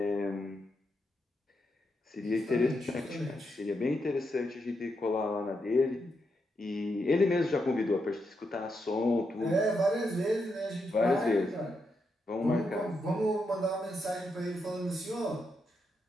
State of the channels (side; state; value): both; normal; correlation 0.83